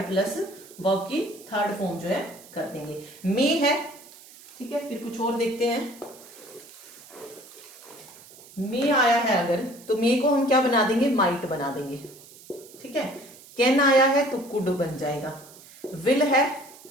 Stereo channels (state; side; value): noise; right; hiss, 21 dB below the sound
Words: प्लस वर्ब की थर्ड फॉर्म जो है कर देंगे। मे है, ठीक है, फिर कुछ और देखते हैं। मे आया है अगर तो मे को हम क्या बना देंगे? माइट बना देंगे। ठीक है, कैन आया है तो कुड बन जाएगा। विल है